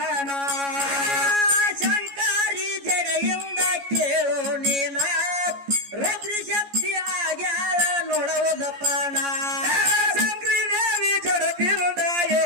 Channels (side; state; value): left; late; 14 ms